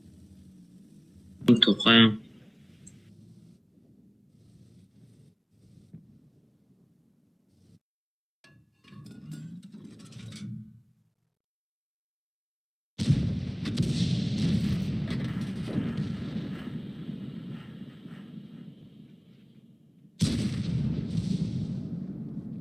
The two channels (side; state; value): both; identical; correlation 1.00